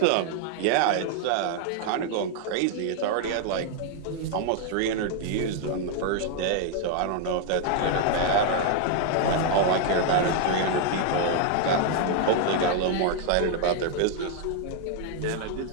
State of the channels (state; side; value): different; both; correlation 0.00